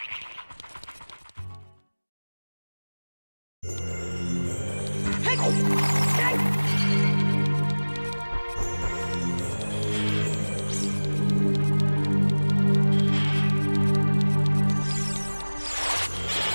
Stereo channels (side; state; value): both; inverted; correlation -1.00